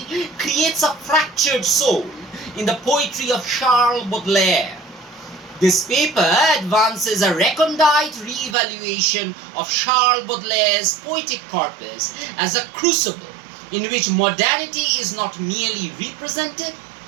creates a fractured soul in the poetry of Charles Baudelaire. This paper advances a recondite re-evaluation of Charles Baudelaire's poetic corpus as a crucible in which modernity is not merely represented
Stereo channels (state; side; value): drops out; left; at 8.6 s